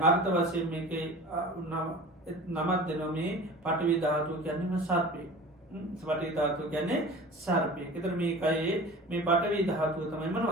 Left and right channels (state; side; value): normal; both; correlation 0.39